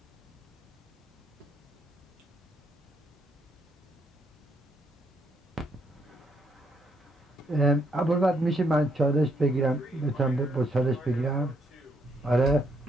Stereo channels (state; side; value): normal; both; correlation 0.73